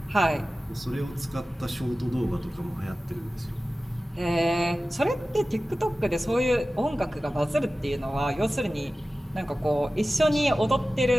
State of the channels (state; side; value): normal; both; correlation 0.96